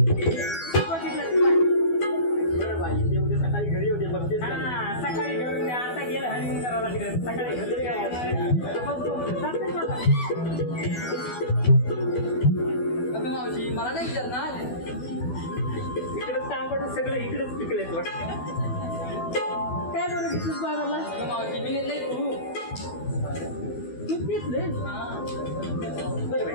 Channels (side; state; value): right; late; 12 ms